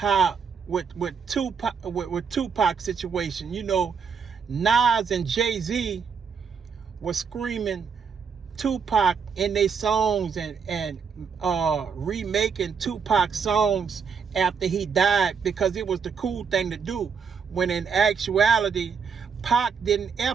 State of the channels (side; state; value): left; quieter; 6.1 dB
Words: with Tupac situation, you know, Nas and Jay-Z were screaming Tupac in their songs and remaking Tupac songs after he died because it was the cool thing to do, when in actuality Pac didn't